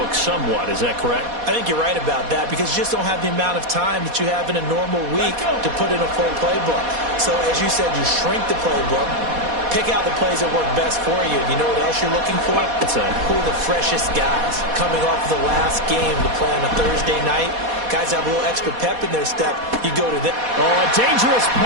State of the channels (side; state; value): left; late; 4.2 ms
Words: somewhat. Is that correct? I think you're right about that because you just don't have the amount of time that you have in a normal week to put in a full playbook. So as you said, you shrink the playbook, pick out the plays that work best for you. You know what else you're looking for? Who are the freshest guys coming off the last game to play on a Thursday night? Guys have a little extra pep in their step. You go to them. Oh, a dangerous